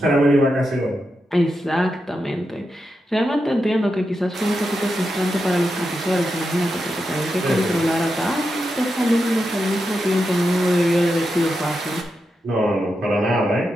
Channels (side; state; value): both; normal; correlation 0.87